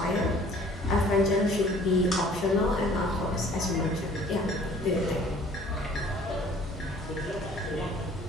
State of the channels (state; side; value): normal; both; correlation 0.53